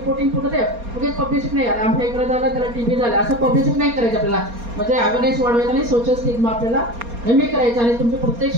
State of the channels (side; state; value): left; late; 4.3 ms